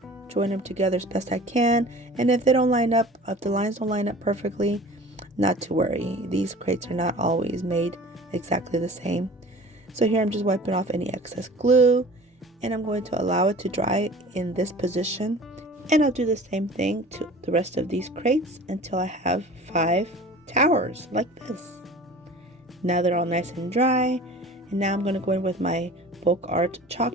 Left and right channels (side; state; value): both; normal; correlation 0.42